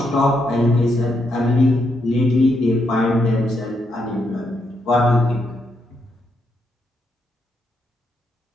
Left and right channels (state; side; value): normal; both; correlation 0.79